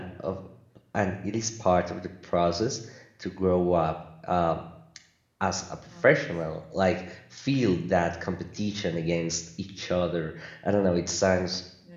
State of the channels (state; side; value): identical; both; correlation 1.00